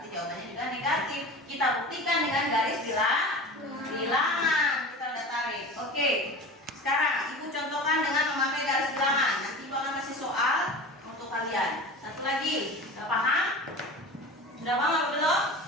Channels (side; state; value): both; normal; correlation 0.34